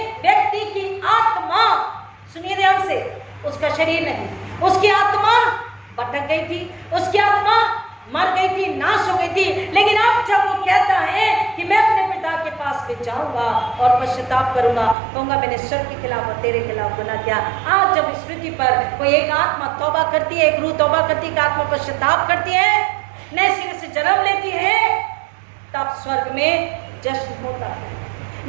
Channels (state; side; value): drops out; left; at 15.0 s